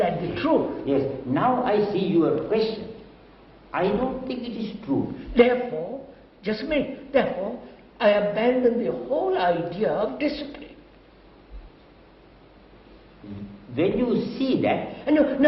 the truth? Yes. Now I see your question. I don't think it is true. Therefore, just a minute, therefore, I abandon the whole idea of discipline. When you see that, No.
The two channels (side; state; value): both; identical; correlation 1.00